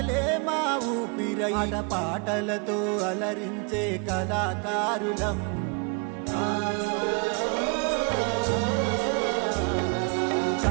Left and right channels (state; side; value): quieter; left; 34.3 dB